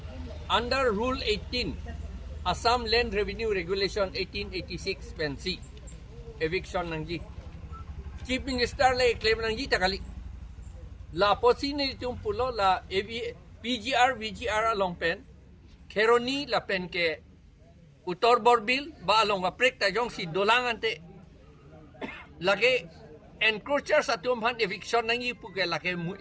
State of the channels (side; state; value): both; identical; correlation 1.00